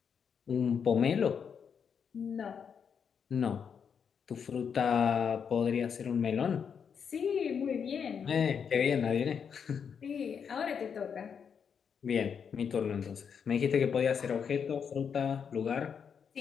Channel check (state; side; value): quieter; right; 7.0 dB